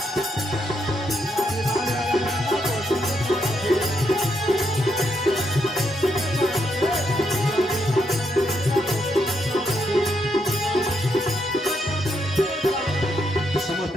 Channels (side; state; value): both; normal; correlation 0.78